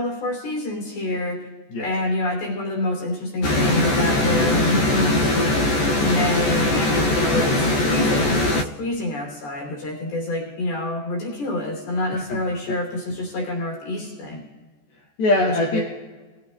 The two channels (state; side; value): late; right; 14 ms